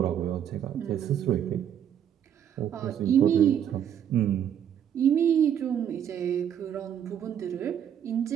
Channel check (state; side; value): quieter; left; 9.4 dB